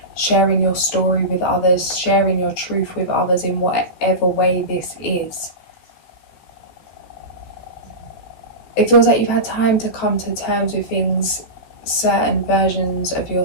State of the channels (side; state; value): right; late; 14 ms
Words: sharing your story with others, sharing your truth with others in whatever way this is. It feels like you've had time to come to terms with things, certain versions of